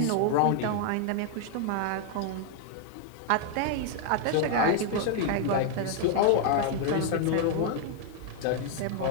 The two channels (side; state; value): both; different; correlation 0.00